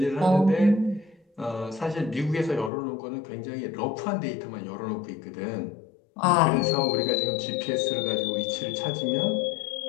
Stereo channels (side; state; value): right; drops out; at 2.7 s